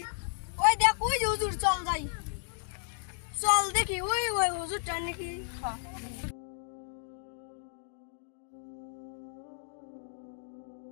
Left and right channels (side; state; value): right; silent; digital silence